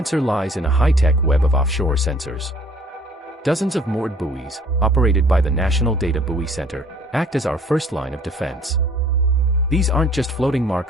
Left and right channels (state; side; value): normal; both; correlation 0.56